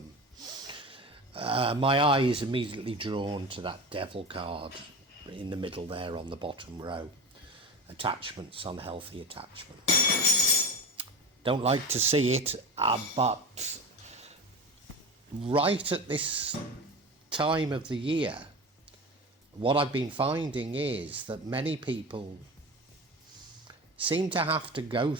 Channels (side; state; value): both; normal; correlation 0.29